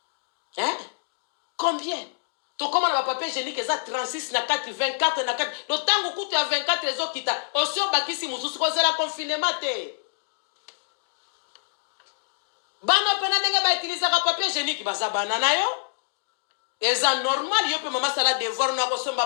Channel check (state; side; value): silent; right; digital silence